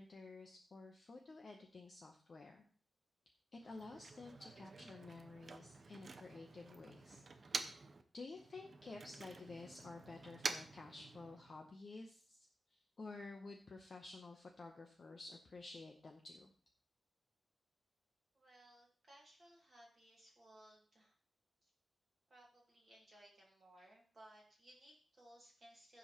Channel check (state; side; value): normal; both; correlation 0.89